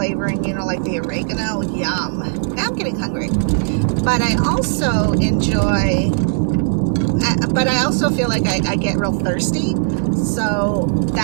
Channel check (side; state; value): left; silent; 67 dB below the other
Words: you know, like the oregano. Yum. Now I'm getting hungry. But I also enjoy, but I also feel like I get real thirsty. So